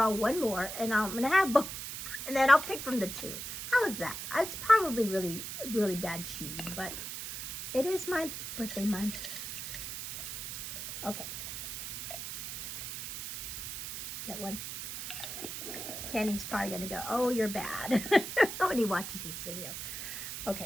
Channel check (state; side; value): noise; right; hiss, 6 dB below the sound